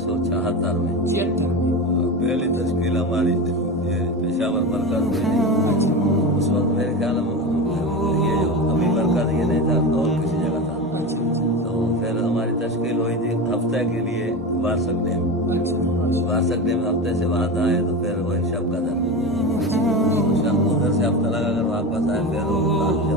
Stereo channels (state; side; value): normal; both; correlation 0.23